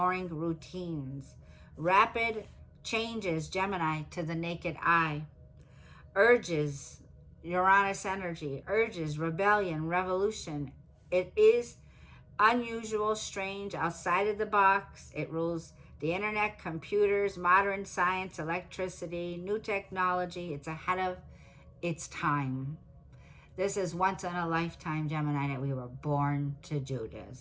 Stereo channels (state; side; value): identical; both; correlation 1.00